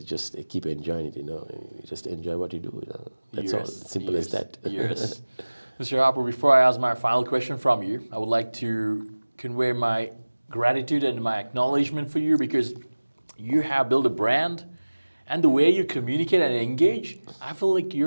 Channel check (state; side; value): inverted; both; correlation -1.00